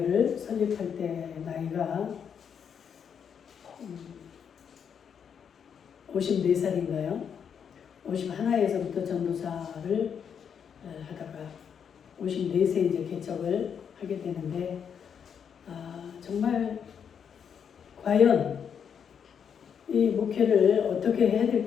설립할 때 나이가 54살인가요? 51에서부터 전도사를 하다가 54세 이제 개척을 하게 되는데 정말 과연 이 목회를 어떻게 해야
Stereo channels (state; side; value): quieter; right; 7.5 dB